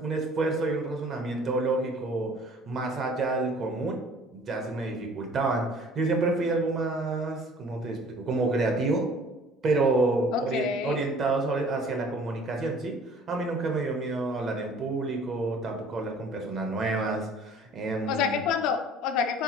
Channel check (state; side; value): normal; both; correlation 0.51